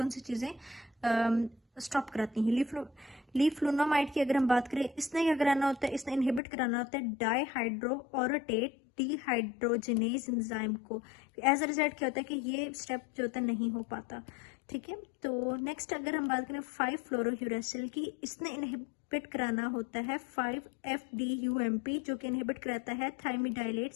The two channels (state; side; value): drops out; right; at 6.4 s